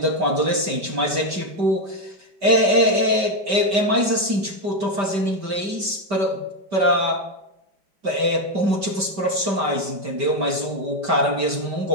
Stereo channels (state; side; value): late; left; 5.1 ms